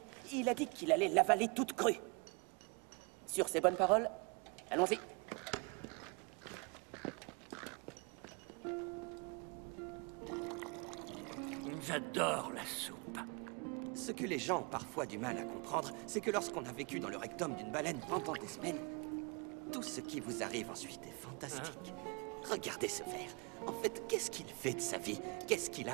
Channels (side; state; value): left; quieter; 31.7 dB